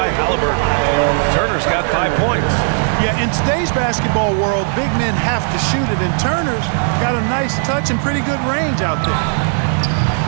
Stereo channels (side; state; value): left; silent; 58 dB below the other